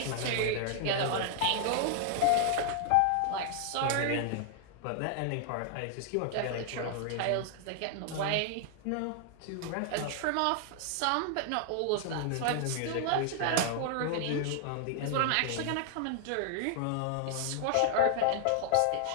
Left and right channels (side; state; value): both; different; correlation 0.00